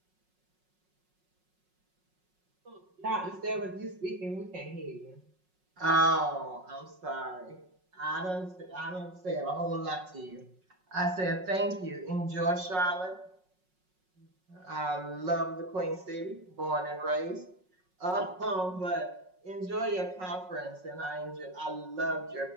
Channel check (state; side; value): late; left; 5.4 ms